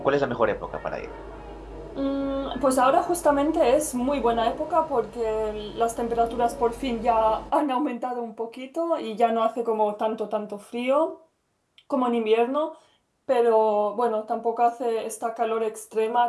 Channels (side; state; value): both; identical; correlation 1.00